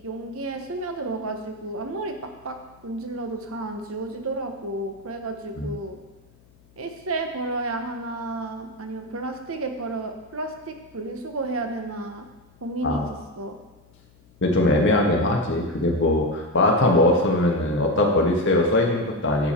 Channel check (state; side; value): noise; left; hum, 29 dB below the sound